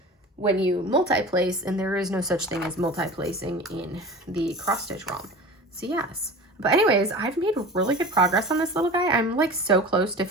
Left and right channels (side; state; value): both; normal; correlation 0.36